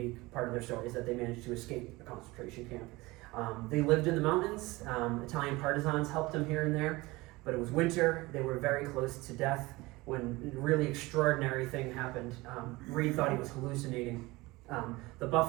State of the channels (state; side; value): quieter; left; 21.5 dB